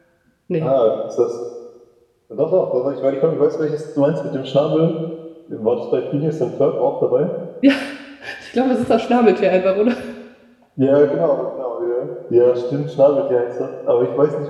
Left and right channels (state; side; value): identical; both; correlation 1.00